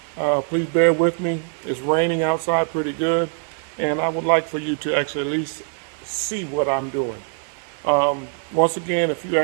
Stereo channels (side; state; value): left; silent; 64 dB below the other